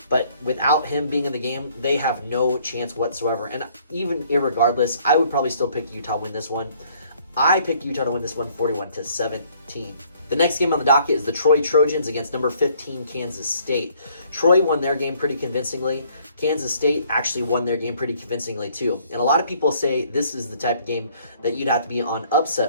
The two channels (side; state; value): both; inverted; correlation -0.62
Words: But without him being in the game, they have no chance whatsoever. And even irregardless, I would probably still pick Utah to win this one. I picked Utah to win this one 41-17. The next game on the docket is the Troy Trojans against number 15 Kansas State. Troy won their game pretty convincingly. Kansas State actually won their game pretty convincingly too. And a lot of people say this is the type of game that you'd have to be on